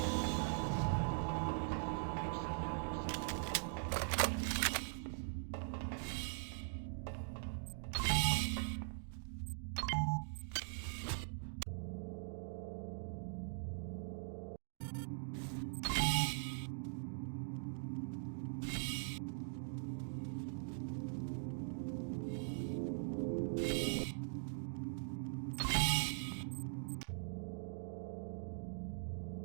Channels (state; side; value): silent; left; digital silence